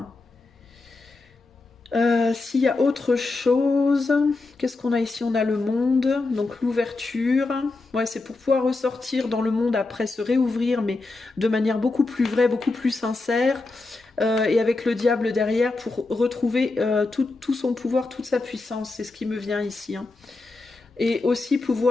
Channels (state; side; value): quieter; right; 3.4 dB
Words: S'il y a autre chose, qu'est-ce qu'on a ici? On a le monde, donc l'ouverture. Ouais, c'est pour pouvoir ressortir dans le monde après, se réouvrir, mais de manière beaucoup plus vraie, beaucoup plus sincère. Et avec le diable derrière pour retrouver tout son pouvoir, toute sa puissance. C'est ce qui me vient ici. Hein. Et aussi